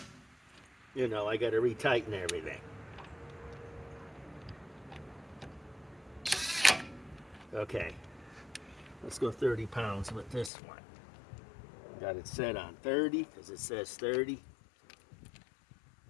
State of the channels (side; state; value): right; drops out; at 10.5 s